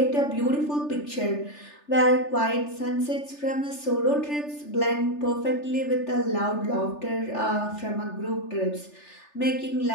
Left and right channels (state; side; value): late; right; 3.4 ms